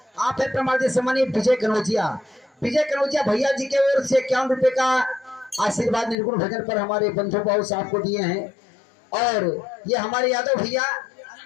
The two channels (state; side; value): drops out; right; at 6.2 s